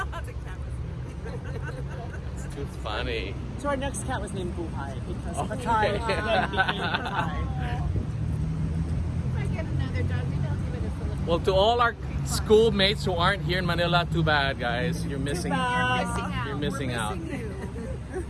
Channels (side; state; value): both; identical; correlation 1.00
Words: It's too funny. So our next cat was named Buhai, because Oh, Patai okay. then became Patai. If I get another dog, we don't give it a Philippine. Well, to all our schoolmates who aren't here in Manila, too bad, guys. You're missing. bad. You're missing We're out. missing you.